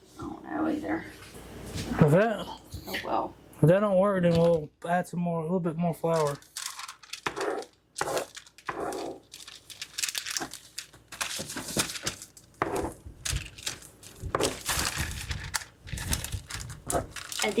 I don't know either. If that, Oh well. if that don't work, then we'll add a little bit more flour. And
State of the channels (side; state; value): both; identical; correlation 1.00